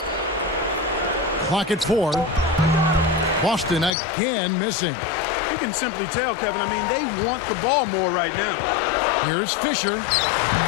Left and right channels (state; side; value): drops out; right; at 3.9 s